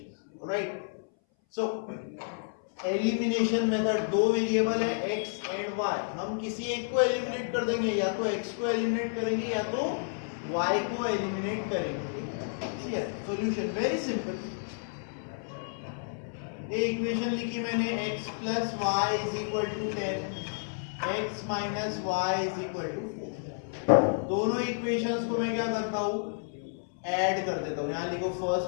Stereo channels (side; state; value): right; silent; 57 dB below the other